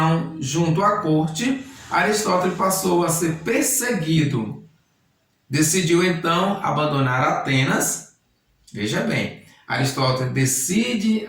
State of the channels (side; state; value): both; identical; correlation 1.00